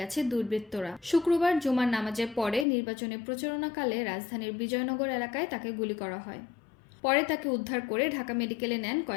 দুর্বৃত্তরা। শুক্রবার জুমার নামাজের পরে নির্বাচনী প্রচারণাকালে রাজধানীর বিজয়নগর এলাকায় তাকে গুলি করা হয়। পরে তাকে উদ্ধার করে ঢাকা মেডিকেলে নেন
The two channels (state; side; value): drops out; right; at 2.7 s